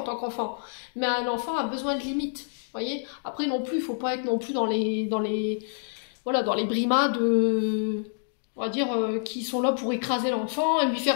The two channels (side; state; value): right; silent; digital silence